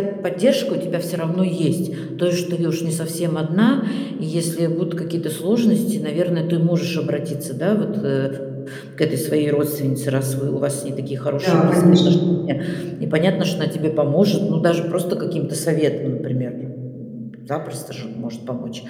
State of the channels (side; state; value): both; identical; correlation 1.00